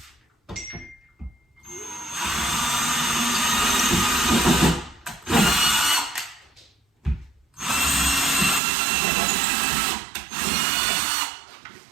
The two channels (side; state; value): left; drops out; at 8.6 s